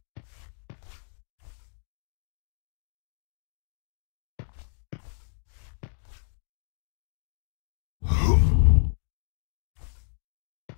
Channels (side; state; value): right; silent; digital silence